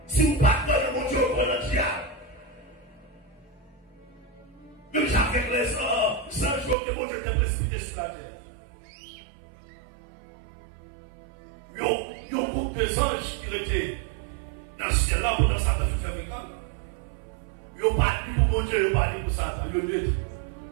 Si vous ne pas dans mon Dieu, vous prenez le diable. Même avec les 100 jours que mon Dieu était précipité sur la terre. Il y a un groupe de anges qui étaient dans le ciel là pendant Satan fait faire l'école. Ils n'ont pas dit pour mon Dieu, ils n'ont pas dit pour Satan. Ils ont dit,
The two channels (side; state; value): left; drops out; at 6.8 s